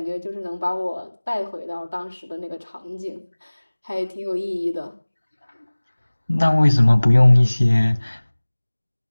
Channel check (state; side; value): inverted; both; correlation -1.00